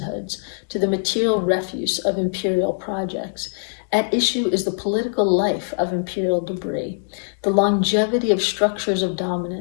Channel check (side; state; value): right; silent; digital silence